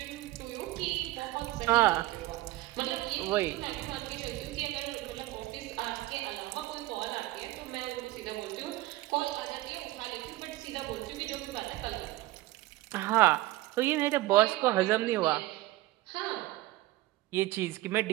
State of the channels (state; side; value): quieter; left; 17.7 dB